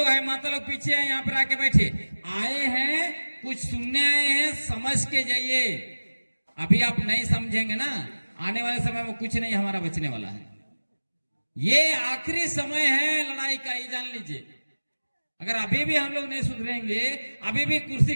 हैं माता लोग पीछे हैं, यहाँ पर आके बैठे। आए हैं कुछ सुनने आए हैं, समझ के जाइए। अभी आप नहीं समझेंगे ना, आने वाले समय में कुछ नहीं हमारा बचने वाला है। ये आखिरी समय है लड़ाई का, ये जान लीजिए। अगर अभी भी हम लोग नहीं सुधरेंगे, अभी भी कुर्सी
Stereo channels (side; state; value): both; inverted; correlation -1.00